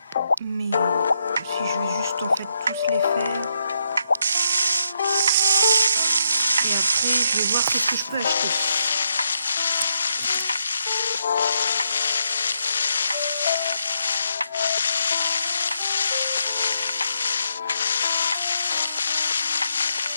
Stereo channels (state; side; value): inverted; both; correlation -0.79